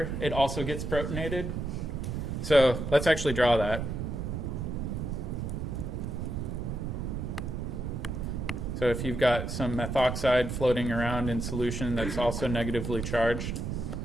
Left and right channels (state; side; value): noise; right; rumble, 3 dB below the sound